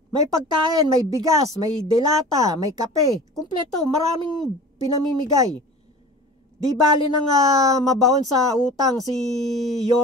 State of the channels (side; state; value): both; normal; correlation 0.39